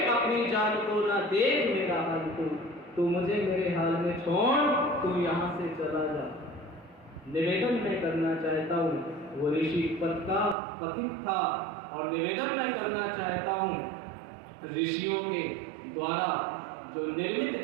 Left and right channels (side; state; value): left; drops out; at 10.6 s